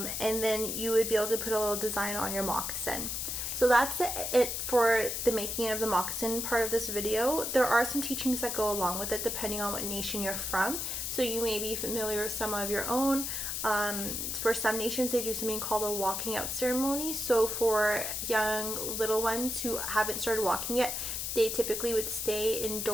then you would be able to put a little design on your moccasin. So that's it for the making of the moccasin part of this video. There are some teachings that go along with it depending on what nation you're from. So you may be familiar with some of your own. For some nations, they do something called a walking out ceremony. So for young little ones who haven't started walking yet, they typically would stay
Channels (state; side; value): noise; left; hiss, 3 dB below the sound